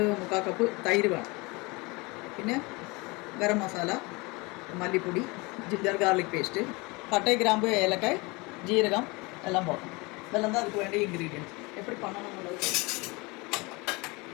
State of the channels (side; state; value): right; quieter; 25.8 dB